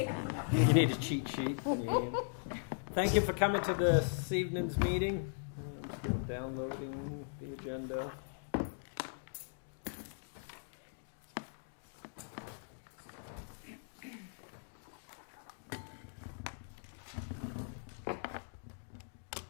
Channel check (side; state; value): right; silent; digital silence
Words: You need a cheat sheet. Thank you for coming to this evening's meeting. I'm still downloading the agenda.